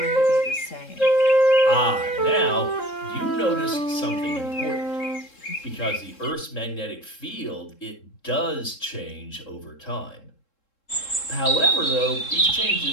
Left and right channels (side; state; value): right; late; 3.7 ms